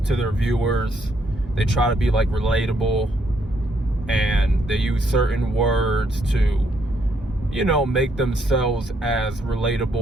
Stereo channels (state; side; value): normal; both; correlation 0.73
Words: to their viewers, they try to be like relatable, and they use certain words to, you know, make themselves as